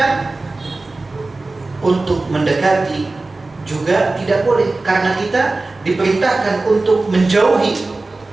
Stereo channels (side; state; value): left; quieter; 3.3 dB